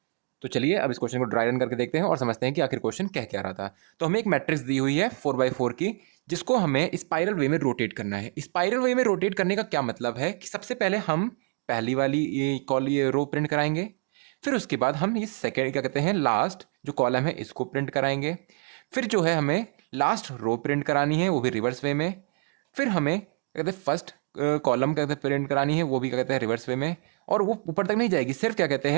तो चलिए अब इस क्वेश्चन को ड्राई रन करके देखते हैं और समझते हैं कि आखिर क्वेश्चन कह क्या रहा था। तो हमें एक मैट्रिक्स दी हुई है 4x4 की, जिसको हमें स्पाइरल वे में रोटेट करना है। स्पाइरल वे में रोटेट करने का क्या मतलब है कि सबसे पहले हम पहली वाली ये रो प्रिंट कराएंगे, फिर उसके बाद हम ये सेकेंड क्या कहते हैं लास्ट जो कॉलम है इसको प्रिंट कराएंगे, फिर जो है हमें लास्ट रो प्रिंट करानी है वो भी रिवर्स वे में, फिर हमें क्या कहते हैं फर्स्ट कॉलम क्या कहते हैं प्रिंट करानी है वो भी क्या कहते हैं रिवर्स वे में, और वो ऊपर तक नहीं जाएगी, सिर्फ क्या कहते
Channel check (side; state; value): left; quieter; 37.1 dB